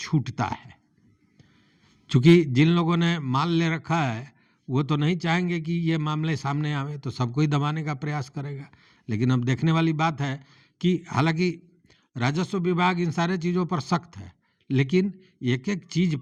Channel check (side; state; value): both; identical; correlation 1.00